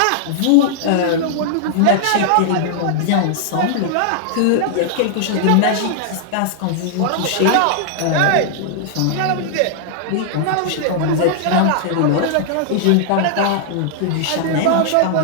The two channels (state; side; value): different; both; correlation -0.01